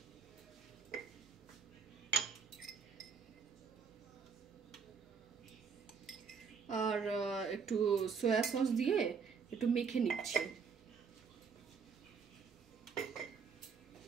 আর একটু সয়া সস দিয়ে একটু মেখে নিচ্ছি।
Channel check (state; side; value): quieter; left; 5.9 dB